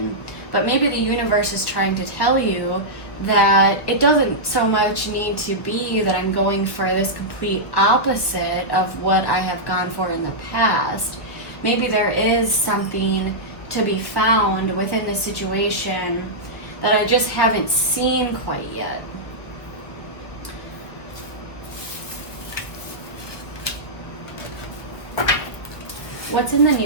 But maybe the universe is trying to tell you that it doesn't so much need to be that I'm going for this complete opposite of what I have gone for in the past. Maybe there is something to be found within the situation that I just haven't seen quite yet. What's in the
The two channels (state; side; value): late; right; 1.1 ms